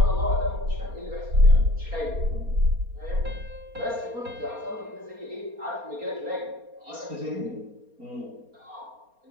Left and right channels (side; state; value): left; late; 4.3 ms